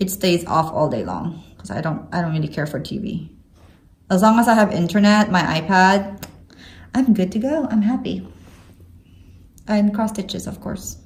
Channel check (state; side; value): identical; both; correlation 1.00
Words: stays off all day long because I don't really care for TV. As long as I have internet, my iPad, I'm good to go. I'm happy. And cross stitches, of course.